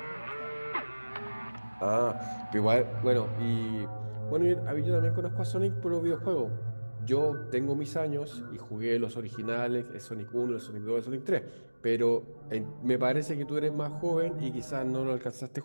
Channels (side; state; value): both; inverted; correlation -1.00